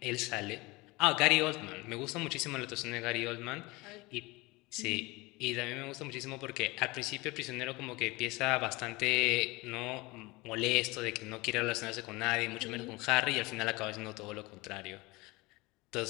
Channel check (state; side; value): quieter; right; 23.1 dB